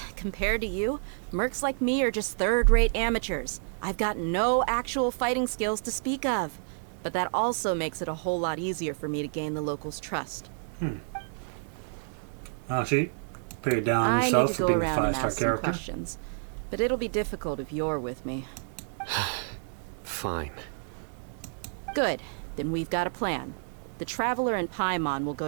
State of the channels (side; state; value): left; silent; digital silence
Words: Compared to you, mercs like me are just third-rate amateurs. I've got no actual fighting skills to speak of. But that also makes it a whole lot easier for me to gain the locals' trust. Oh, she paid down I need herself to for go being a around and 5-star ask some character. questions. But it'll be difficult if you're with me. Fine. Good. Then we've got a plan. The Traveler and Paimon will